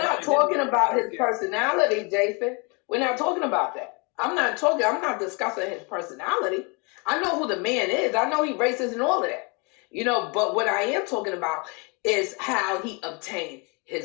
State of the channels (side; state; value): right; quieter; 31.8 dB